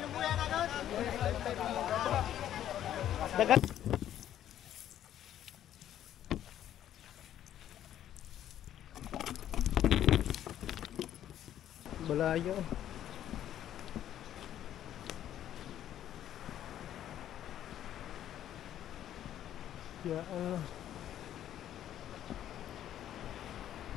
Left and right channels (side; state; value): right; quieter; 11.3 dB